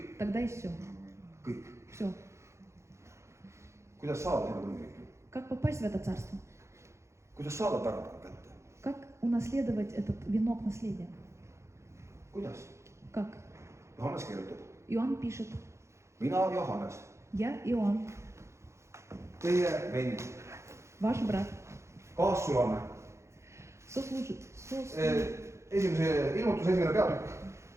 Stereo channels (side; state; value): left; late; 0.14 ms